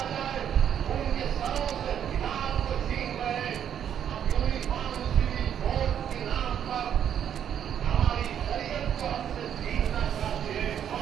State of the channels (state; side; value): quieter; left; 9.3 dB